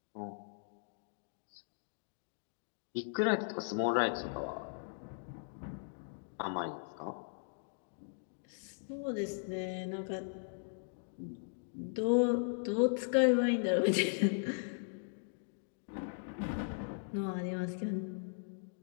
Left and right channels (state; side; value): silent; right; digital silence